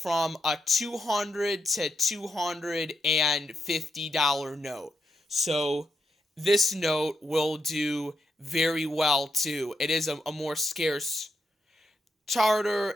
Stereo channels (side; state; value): both; normal; correlation 0.82